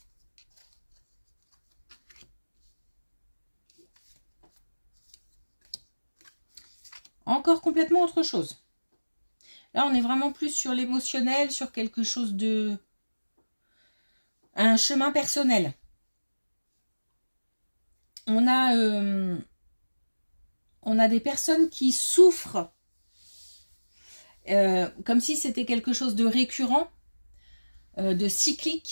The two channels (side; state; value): both; inverted; correlation -1.00